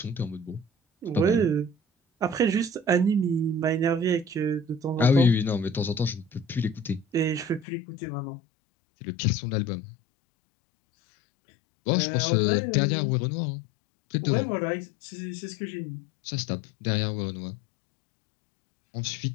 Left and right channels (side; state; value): right; drops out; at 7.7 s